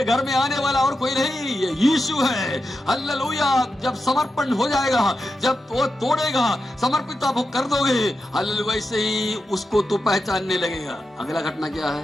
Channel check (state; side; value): normal; both; correlation 0.89